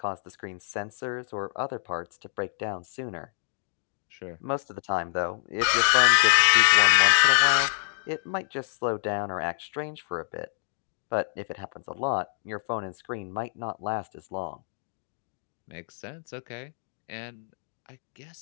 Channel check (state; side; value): silent; right; digital silence